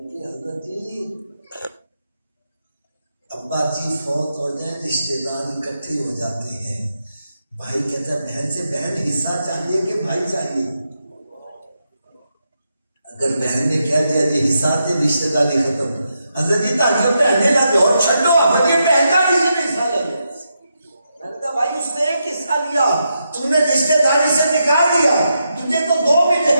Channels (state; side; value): inverted; both; correlation -0.84